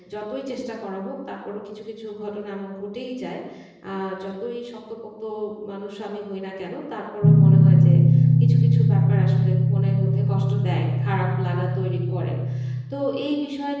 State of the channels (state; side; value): identical; both; correlation 1.00